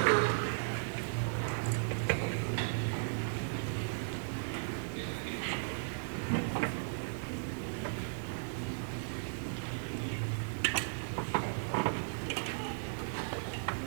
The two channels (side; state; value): left; silent; digital silence